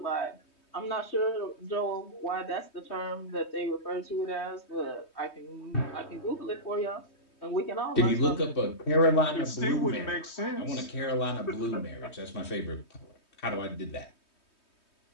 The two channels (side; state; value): right; late; 3.2 ms